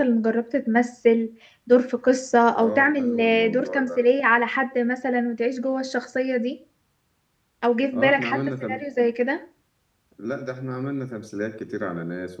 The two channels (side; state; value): both; identical; correlation 1.00